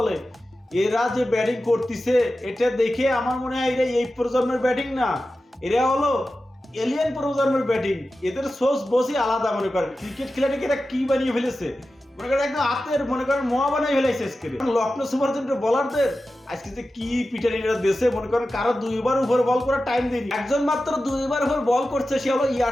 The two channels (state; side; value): normal; both; correlation 0.93